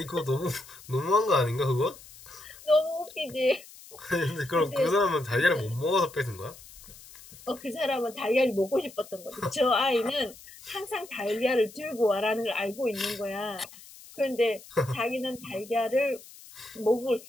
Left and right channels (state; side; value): noise; left; hiss, 19 dB below the sound